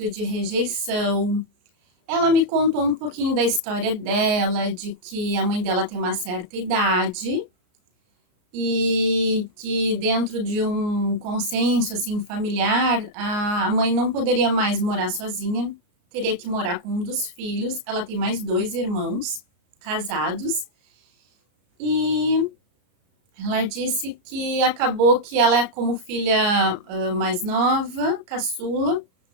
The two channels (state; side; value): late; left; 34 ms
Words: de rejeição. Ela me contou um pouquinho da história dela, de que a mãe dela tem uma certa idade e que dentro de um consenso assim familiar, a mãe não poderia mais morar sozinha, teria que morar com um dos filhos. Ela tem mais 2 irmãos casados e ela disse que acabou que ela é como filha mais nova, caçula.